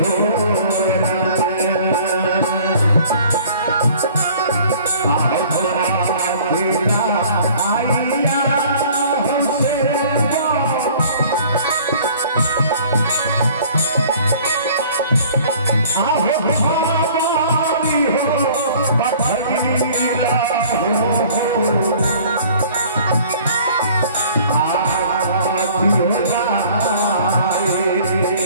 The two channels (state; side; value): inverted; both; correlation -0.52